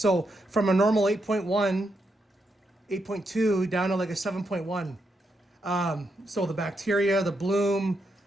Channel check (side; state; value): both; normal; correlation 0.82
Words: from a normal 8.1, 8.2 down to like a 7.1. So the bacteria, the bloom,